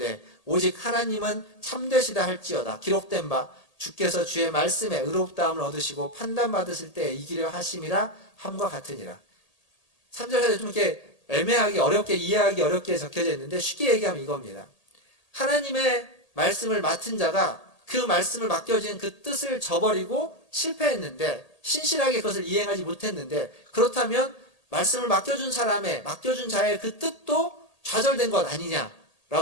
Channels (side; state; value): right; late; 1.8 ms